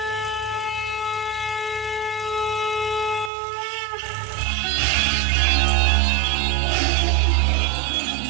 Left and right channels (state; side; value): drops out; left; at 3.3 s